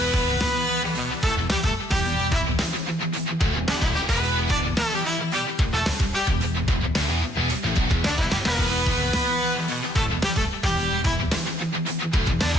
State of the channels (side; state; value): both; normal; correlation 0.70